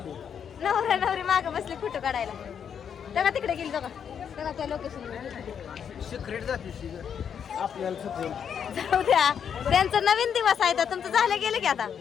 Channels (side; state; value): right; quieter; 7.8 dB